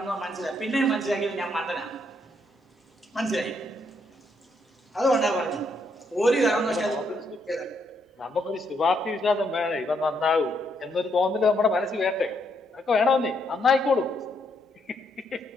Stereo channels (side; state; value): both; normal; correlation 0.75